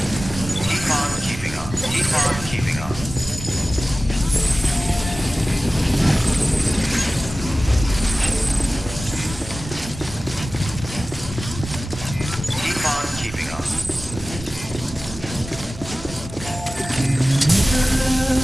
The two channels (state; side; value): normal; both; correlation 0.96